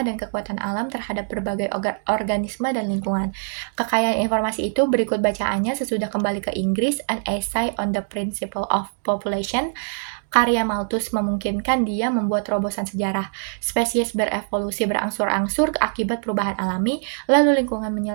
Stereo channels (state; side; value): silent; left; digital silence